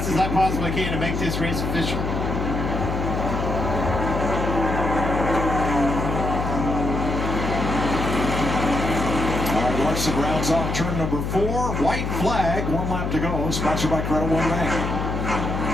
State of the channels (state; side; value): noise; left; hum, 2 dB below the sound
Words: as I possibly can to make this race official. Larson rounds off turn number 4. White flag, 1 lap to go. Sponsored by Credit One Bank.